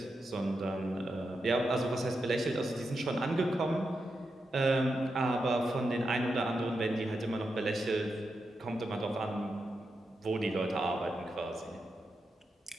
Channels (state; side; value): normal; both; correlation 0.87